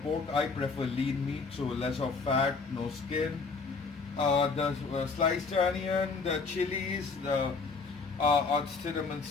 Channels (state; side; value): quieter; right; 4.5 dB